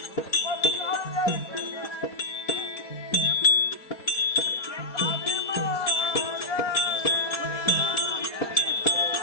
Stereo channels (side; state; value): right; late; 4.2 ms